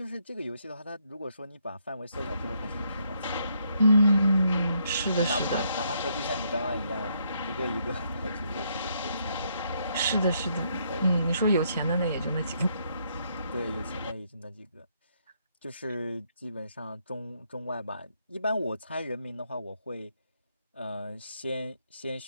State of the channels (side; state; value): both; inverted; correlation -0.74